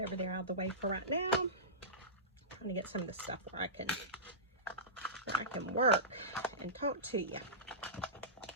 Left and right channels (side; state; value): both; normal; correlation -0.19